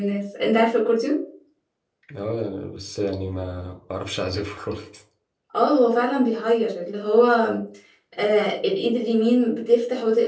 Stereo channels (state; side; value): identical; both; correlation 1.00